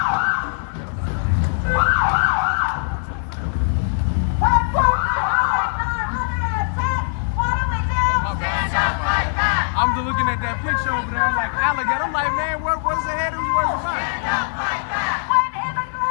I'm just looking at that picture over there like alligator. I'm like, man, what's ahead? Who's worse than mine?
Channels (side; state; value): right; silent; 65 dB below the other